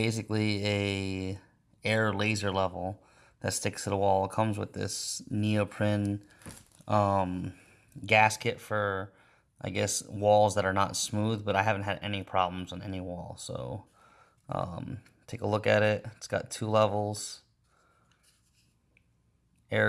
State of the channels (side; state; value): both; identical; correlation 1.00